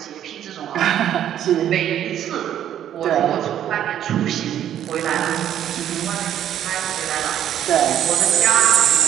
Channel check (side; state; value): left; quieter; 10.7 dB